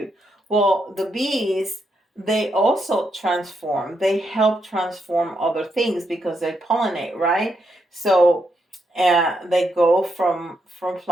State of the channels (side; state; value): both; normal; correlation 0.80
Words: Well, the bees, they also transform. They help transform other things because they pollinate, right? So they go from